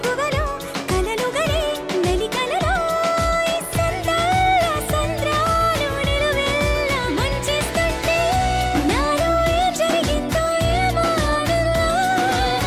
కలలు గలే మెలికలలో ఈ సంద్రాల సంద్రాలు నిలువెల్ల మంచిస్తుంటే నాలో ఏం జరిగిందో ఏమో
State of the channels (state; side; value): identical; both; correlation 1.00